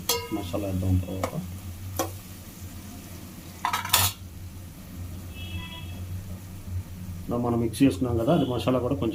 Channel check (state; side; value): identical; both; correlation 1.00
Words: మసాలా వేద్దాం. తర్వాత మనం మిక్స్ చేసుకున్నాం కదా, అది మసాలా కూడా